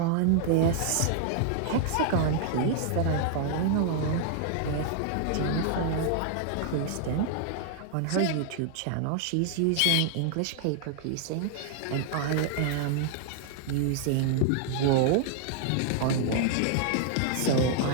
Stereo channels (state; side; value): different; both; correlation 0.00